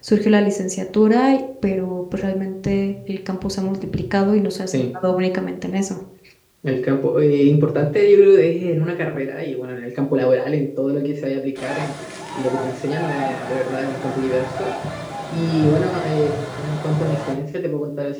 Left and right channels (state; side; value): identical; both; correlation 1.00